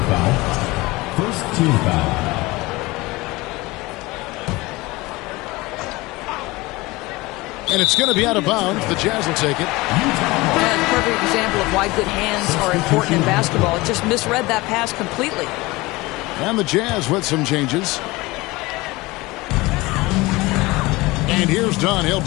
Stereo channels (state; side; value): quieter; right; 21.7 dB